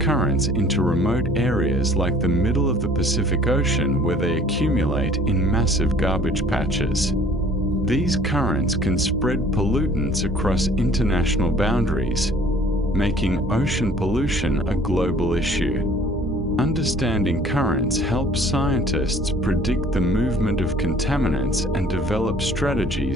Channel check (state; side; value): normal; both; correlation 0.54